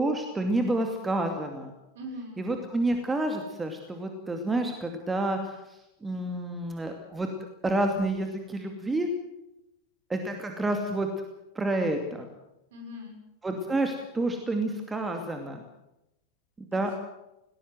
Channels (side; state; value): both; normal; correlation 0.68